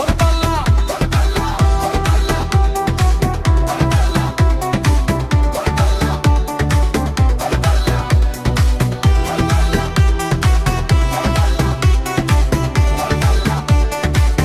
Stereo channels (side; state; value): both; identical; correlation 1.00